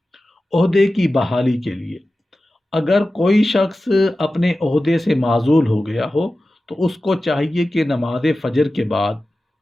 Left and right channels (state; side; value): normal; both; correlation 0.95